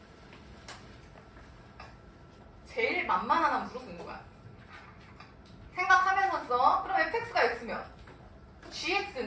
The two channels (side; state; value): both; identical; correlation 1.00